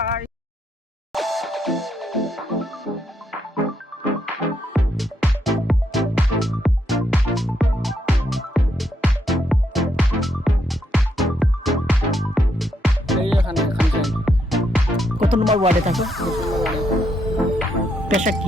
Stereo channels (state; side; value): normal; both; correlation 0.77